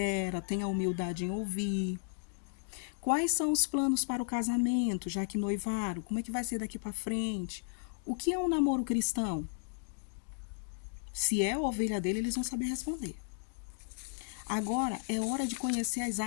tenha humildade em ouvir. Quais são os planos para o casamento, já que noivaram? Como é que vai ser daqui para frente? O que é um namoro cristão? Se é a ovelha dele, eles vão saber responder. Agora é hora de conhecer as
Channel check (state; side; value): silent; right; digital silence